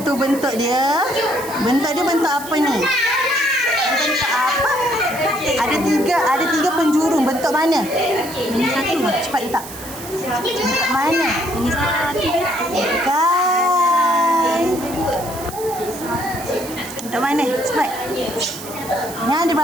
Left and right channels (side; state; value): right; noise; hiss, 13 dB below the sound